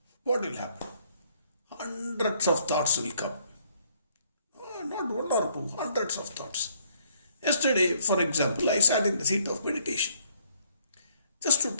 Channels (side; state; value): both; inverted; correlation -0.66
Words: what will happen? Hundreds of thoughts will come. Not one or two, hundreds of thoughts. Yesterday, for example, I sat in the seat of meditation just to